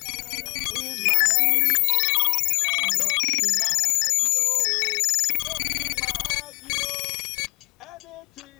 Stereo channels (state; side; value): quieter; right; 28.6 dB